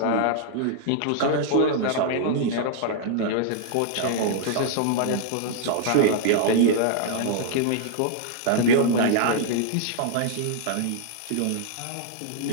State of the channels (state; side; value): different; both; correlation -0.01